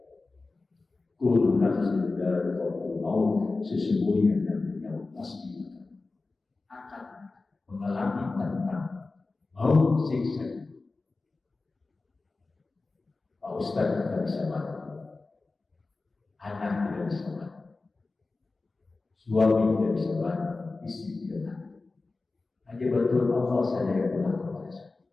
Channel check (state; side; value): quieter; right; 3.6 dB